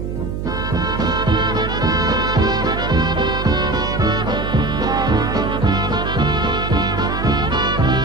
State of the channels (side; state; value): right; noise; hum, 5 dB below the sound